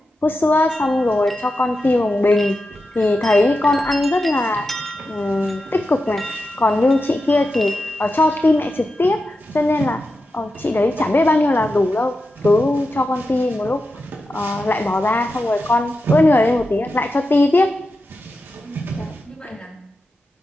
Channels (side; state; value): both; normal; correlation 0.90